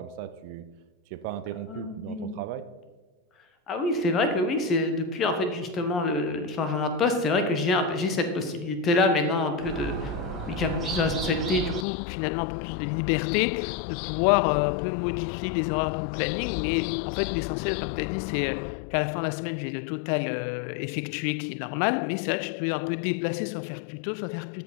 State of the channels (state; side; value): drops out; right; at 11.9 s